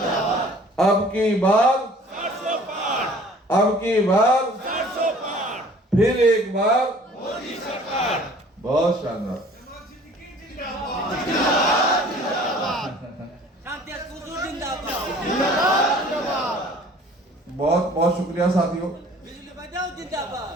अब की बार फिर एक बार मोदी सरकार। बहुत शानदार। बहुत बहुत शुक्रिया साथियों।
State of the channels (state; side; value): normal; both; correlation 0.51